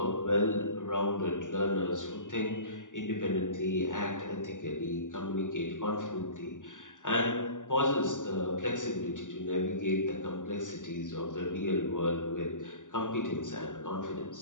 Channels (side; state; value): right; late; 0.87 ms